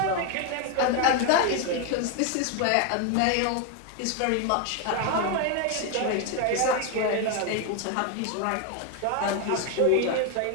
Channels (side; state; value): both; different; correlation 0.01